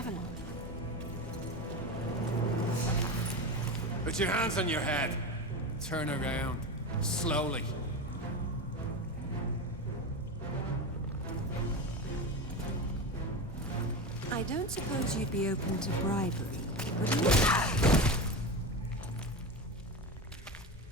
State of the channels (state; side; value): normal; both; correlation 0.22